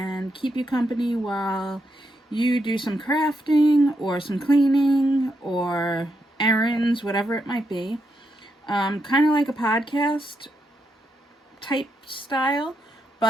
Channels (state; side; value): normal; both; correlation 0.82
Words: keep you company while you do some crafting or some cleaning or errands, whatever it might be. Kind of like a podcast type style,